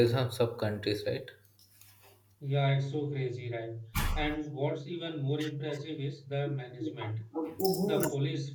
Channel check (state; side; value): identical; both; correlation 1.00